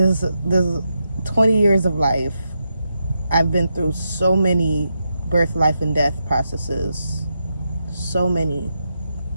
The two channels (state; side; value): inverted; both; correlation -0.85